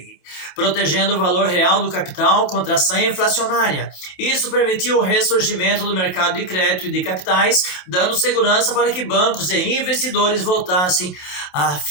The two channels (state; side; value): late; right; 27 ms